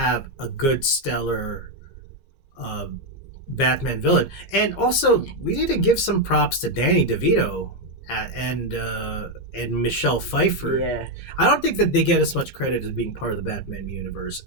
a good stellar Batman villain, and also we need to give some props to Danny DeVito and Michelle Pfeiffer. Yeah, I don't think that they get as much credit as being part of the Batman universe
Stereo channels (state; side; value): late; right; 15 ms